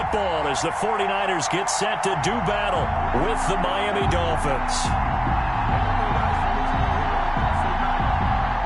as the 49ers get set to do battle with the Miami Dolphins.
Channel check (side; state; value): both; identical; correlation 1.00